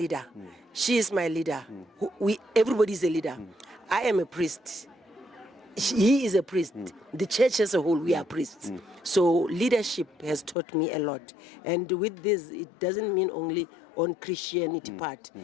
She is my leader. Everybody is a leader. I am a priest. He is a priest. The church as a whole, we are priests. So leadership has taught me a lot. And with this, it doesn't mean only on Christianity part,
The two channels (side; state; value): right; drops out; at 10.6 s